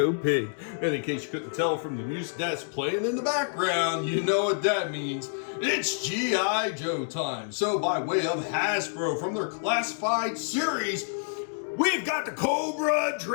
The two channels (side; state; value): right; silent; digital silence